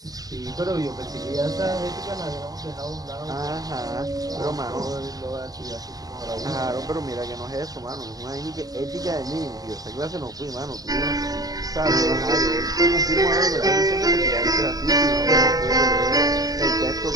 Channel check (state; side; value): late; left; 0.18 ms